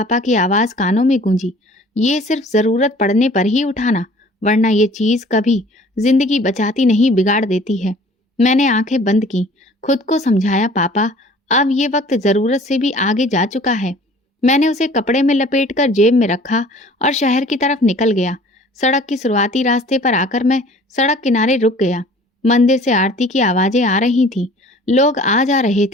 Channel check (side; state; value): both; normal; correlation 0.50